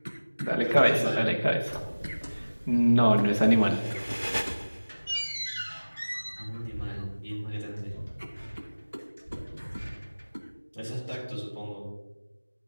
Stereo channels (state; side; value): inverted; both; correlation -1.00